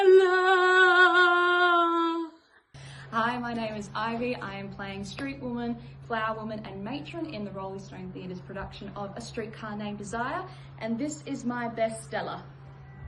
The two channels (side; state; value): both; identical; correlation 1.00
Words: Hi, my name is Ivy. I am playing Street Woman, Flower Woman and Matron in the Roleystone Theatre's production of A Streetcar Named Desire, and this is my best Stella.